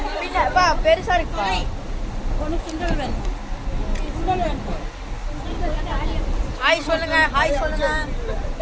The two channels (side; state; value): both; identical; correlation 1.00